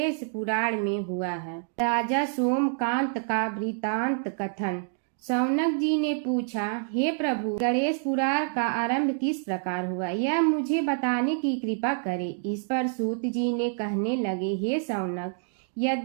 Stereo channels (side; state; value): left; silent; digital silence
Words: पुराण में हुआ है। राजा सोमकांत का वृतांत कथन। शौनक जी ने पूछा, हे प्रभु, गणेश पुराण का आरंभ किस प्रकार हुआ, यह मुझे बताने की कृपा करे। इस पर सूत जी ने कहने लगे, हे शौनक,